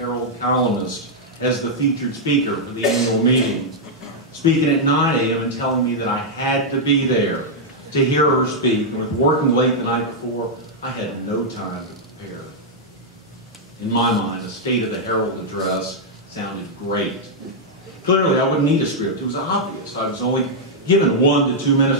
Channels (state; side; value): normal; both; correlation -0.05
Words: columnist, as the featured speaker for the annual meeting, speaking at 9 a.m. and telling me that I had to be there to hear her speak. And with working late the night before, I had no time to prepare. In my mind, a State of the Herald address sounded great. Clearly, I wouldn't need a script. It was obvious. I was only given 1 to 2